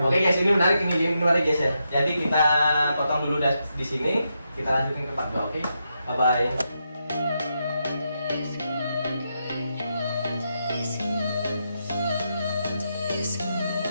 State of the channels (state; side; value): inverted; both; correlation -0.84